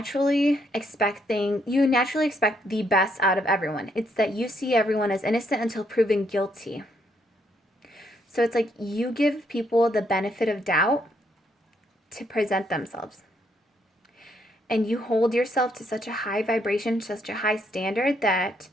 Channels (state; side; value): normal; both; correlation 0.73